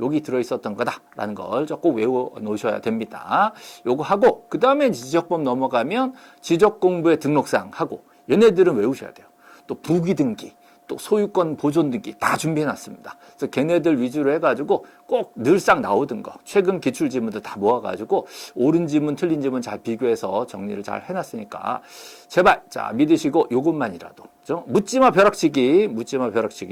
들어있었던 거다라는 걸 꼭 외워 놓으셔야 됩니다. 요거 하고, 그 다음에 지적법 넘어가면 지적공부의 등록사항 하고, 얘네들은 외우셔야 돼요. 또 부기등기, 또 소유권 보존 등기 다 준비해 놨습니다. 그래서 걔네들 위주로 해가지고 꼭 늘상 나오던 거, 최근 기출 지문들 다 모아가지고 옳은 지문, 틀린 지문 잘 비교해서 정리를 잘 해놨으니까 제발 믿으시고 요것만이라도 묻지마 벼락치기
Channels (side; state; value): both; identical; correlation 1.00